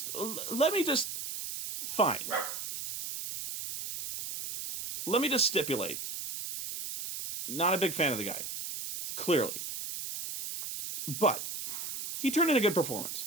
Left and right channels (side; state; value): right; noise; hiss, 6 dB below the sound